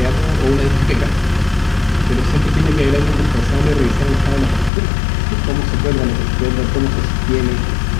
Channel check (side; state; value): right; drops out; at 4.7 s